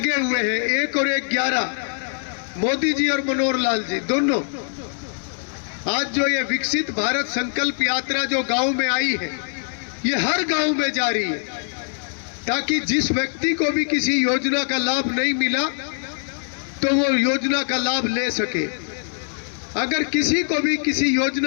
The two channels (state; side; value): silent; right; digital silence